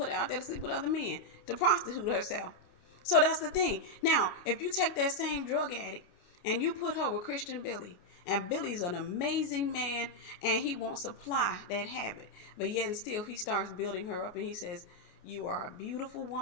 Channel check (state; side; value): late; right; 29 ms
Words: her out there to sleep with other men, to prostitute herself. So that's the thing. Now, if you take that same drug addict and you put her with Christian Billy, and Billy's an amazing man, and he won't supply that habit, but yet and still he starts building her up, and he says, you are a beautiful